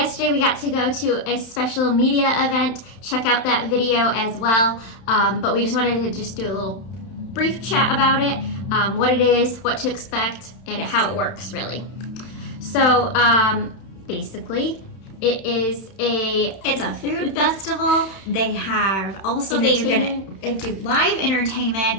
we got to go to a special media event. Check out that video as well. But we just wanted to just do a little brief chat about it, what it is, what to expect, and how it works really. So basically, it's a food festival. They have also they're gonna do live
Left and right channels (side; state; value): right; late; 31 ms